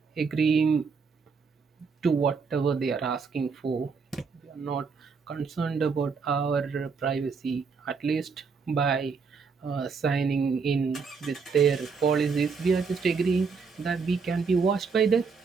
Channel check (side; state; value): left; quieter; 5.3 dB